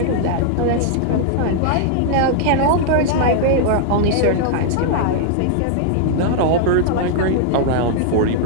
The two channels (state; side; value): different; both; correlation -0.01